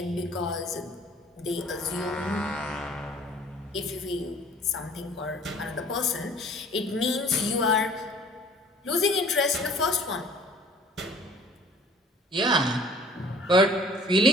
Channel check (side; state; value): both; normal; correlation 0.51